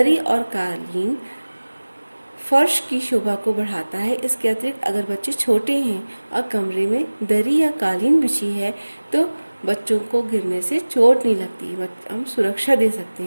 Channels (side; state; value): both; inverted; correlation -1.00